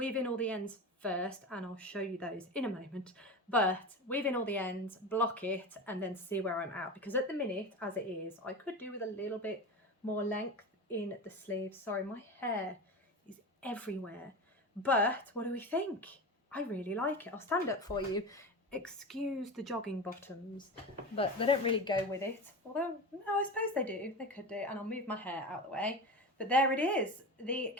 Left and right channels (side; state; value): both; normal; correlation 0.26